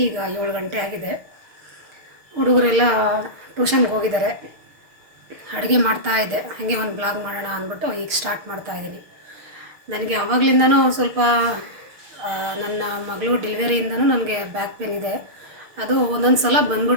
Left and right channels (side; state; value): left; late; 6.6 ms